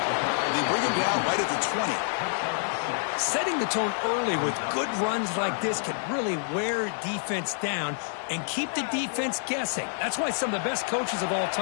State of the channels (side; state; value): right; silent; 60 dB below the other